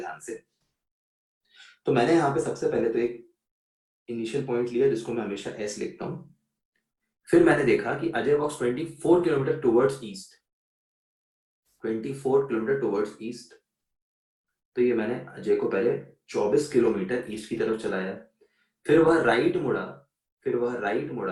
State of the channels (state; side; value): identical; both; correlation 1.00